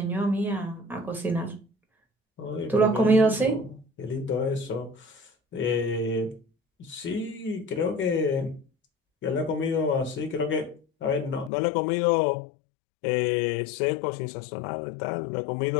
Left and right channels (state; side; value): drops out; right; at 11.5 s